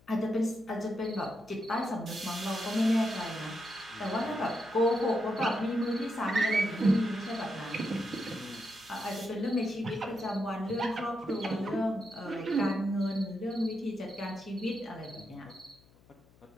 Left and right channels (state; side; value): noise; left; hum, 28 dB below the sound